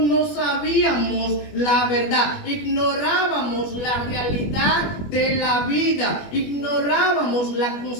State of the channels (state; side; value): late; right; 21 ms